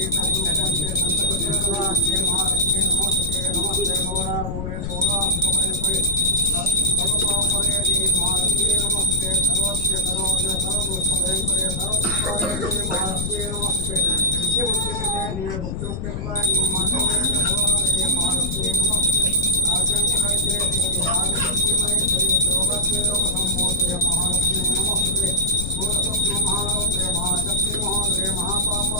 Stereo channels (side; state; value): left; noise; rumble, 4 dB below the sound